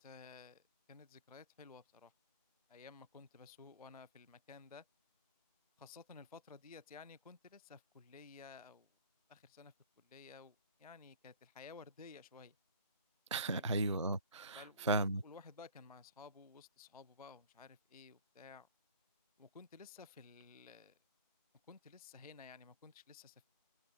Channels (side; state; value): both; inverted; correlation -0.48